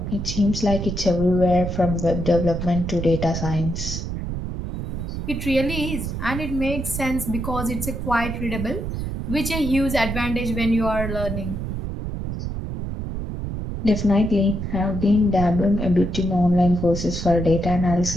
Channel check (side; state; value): right; noise; rumble, 5 dB below the sound